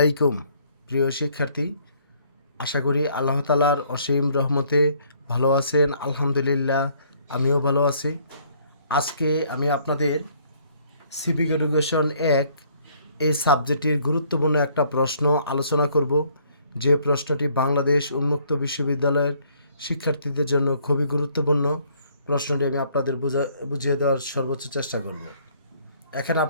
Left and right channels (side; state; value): both; inverted; correlation -0.63